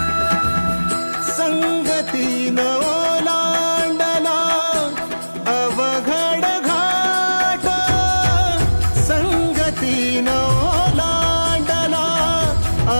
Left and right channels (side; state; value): both; inverted; correlation -1.00